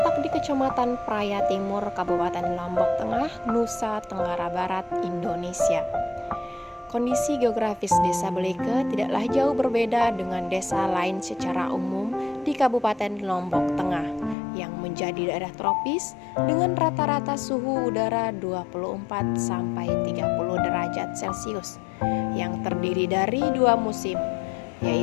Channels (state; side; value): drops out; right; at 14.4 s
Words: di Kecamatan Praya Timur, Kabupaten Lombok Tengah, Nusa Tenggara Barat, Indonesia. Kondisi geografis Desa Beleke tidaklah jauh berbeda dengan desa lain secara umum di Kabupaten Lombok Tengah yang menjadi daerah tropis dengan rata-rata suhu udara 24 sampai 30 derajat Celcius yang terdiri dari dua musim,